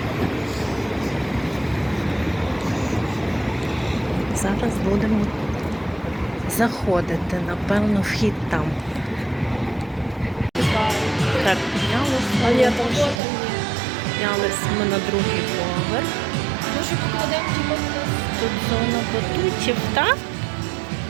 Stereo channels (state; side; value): drops out; left; at 13.2 s